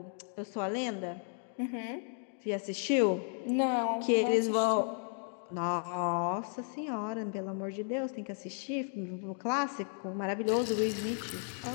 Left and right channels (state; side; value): silent; right; 55 dB below the other